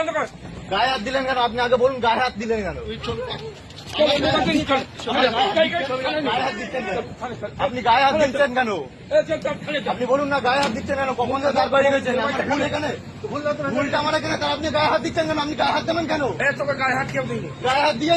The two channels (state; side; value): identical; both; correlation 1.00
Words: কর। গায়ে হাত দিলেন কেন? আপনি আগে বলুন গায়ে হাত দিলেন কেন? মোবাইলটা নিয়ে চল। আপনি গায়ে হাত দিচ্ছেন কেন? আপনি বলুন না গায়ে হাত দিচ্ছেন কেন? কখন যে দাঁড় বাড়িয়ে গেছেন? আমার ভুল এখানে, ভুলটা আমার এখানে, তার আপনি গায়ে হাত দিচ্ছেন কেন? আপনি গায়ে হাত দেবেন কেন? তোকে গায়ে হাত কেউ দিইনি। গায়ে হাত